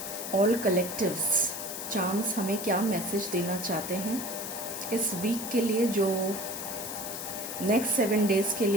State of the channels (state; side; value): noise; left; hiss, 7 dB below the sound